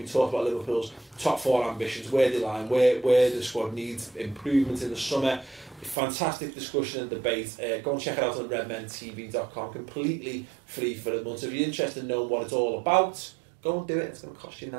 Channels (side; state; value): left; drops out; at 6.0 s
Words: talked about Liverpool's top 4 ambitions, where they lie, where the squad needs improvement in the summer. Fantastic discussion and debate. Go and check it out on redmentv.com, completely free for a month. So if you're interested in knowing what it's all about, go and do it. It's going to cost you